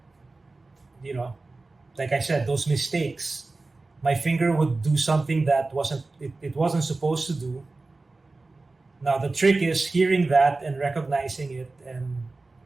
you know, like I said, those mistakes, my finger would do something that it wasn't supposed to do. Now the trick is hearing that and recognizing it and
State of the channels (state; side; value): quieter; left; 3.4 dB